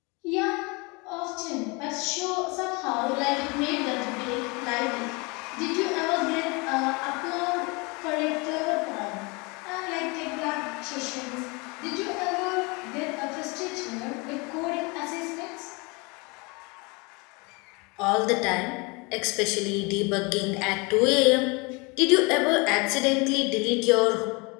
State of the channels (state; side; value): quieter; right; 28.2 dB